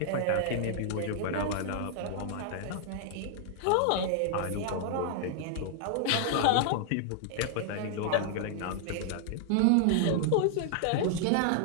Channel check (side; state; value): both; different; correlation -0.01